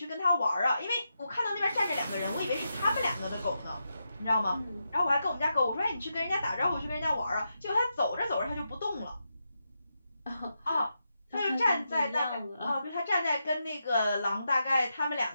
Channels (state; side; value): inverted; both; correlation -0.86